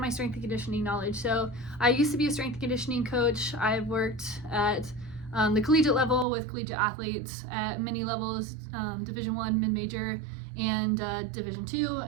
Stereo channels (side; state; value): left; drops out; at 6.2 s